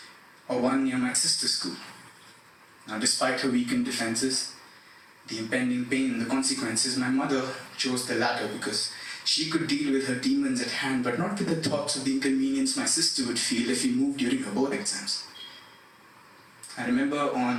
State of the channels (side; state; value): both; identical; correlation 1.00